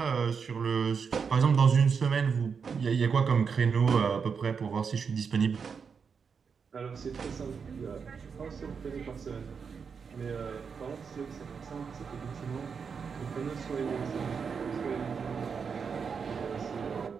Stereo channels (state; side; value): quieter; left; 6.0 dB